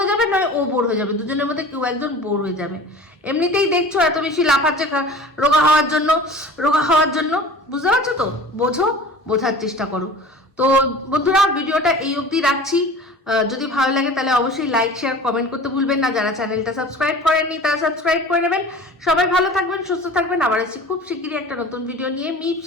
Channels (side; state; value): both; normal; correlation 0.40